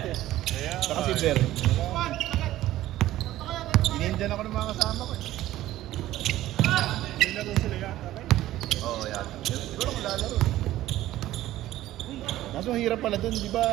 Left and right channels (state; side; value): quieter; left; 14.8 dB